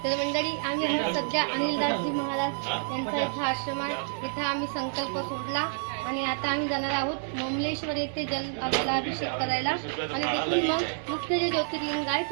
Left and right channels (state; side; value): silent; left; digital silence